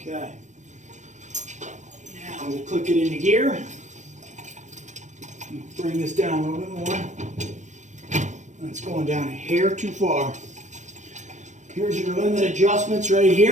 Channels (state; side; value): late; left; 0.35 ms